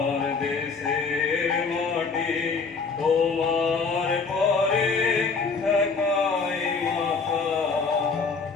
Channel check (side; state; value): right; quieter; 4.8 dB